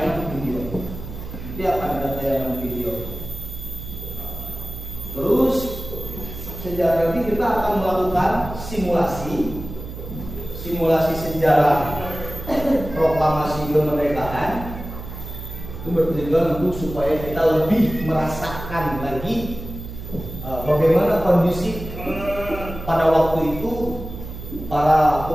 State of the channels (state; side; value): noise; right; hum, 10 dB below the sound